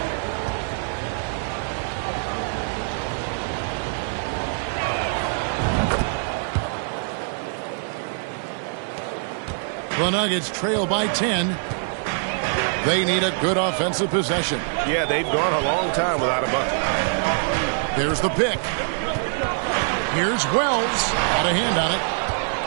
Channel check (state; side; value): silent; left; 63 dB below the other